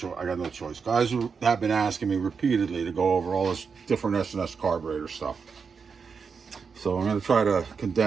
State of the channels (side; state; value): left; quieter; 5.6 dB